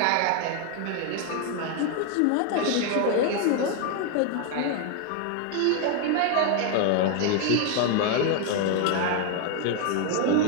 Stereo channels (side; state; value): both; different; correlation 0.01